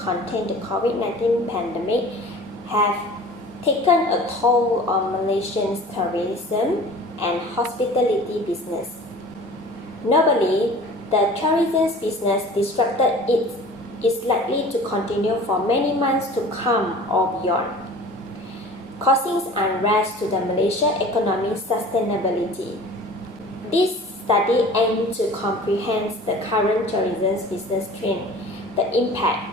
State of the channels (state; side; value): normal; both; correlation 0.43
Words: the COVID-19 pandemic have taken a toll on Malaysian tourism and hospitality business. Notably, the tourism business disrupted is likely to continue for many months to come or beyond, causing unrest to the Malaysian economic sustainability. This study aims to comprehend the current tourism business trend, the impact,